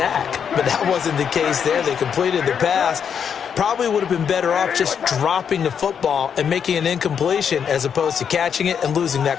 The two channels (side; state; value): right; quieter; 7.5 dB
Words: But that wasn't the case there. They completed the pass. Probably would have been better off just dropping the football and making an incompletion as opposed to catching it and losing